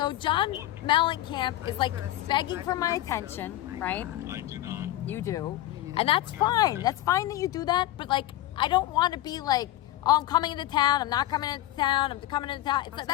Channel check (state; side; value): quieter; right; 15.1 dB